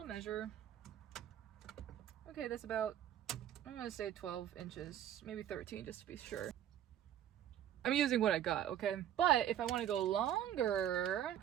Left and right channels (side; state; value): left; quieter; 10.9 dB